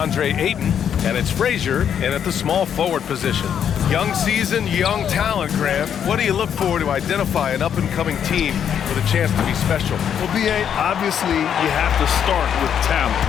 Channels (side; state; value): right; quieter; 8.6 dB